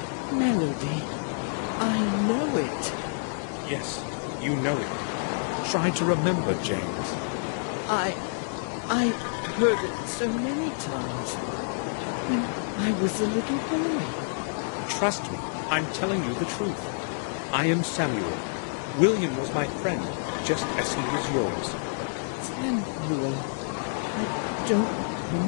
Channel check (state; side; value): silent; right; digital silence